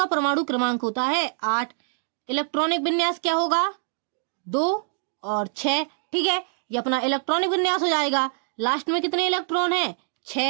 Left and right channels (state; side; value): silent; left; digital silence